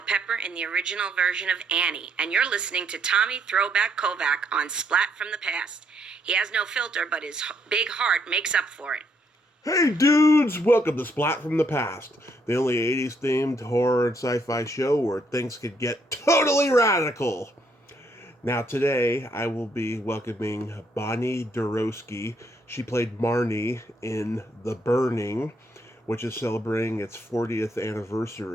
Pepper in the original version of Annie, and you're listening to Tommy Throwback Kovac on Splat from the Past. He has no filter, but his big heart makes up for it. Hey dudes, welcome to Splat from the Past, the only 80s themed horror and sci-fi show where things could get totally radical. Now today I will be welcoming Bonnie Deroski. She played Marnie in The Burning, which is celebrating its 40th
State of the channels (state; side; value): normal; both; correlation 0.72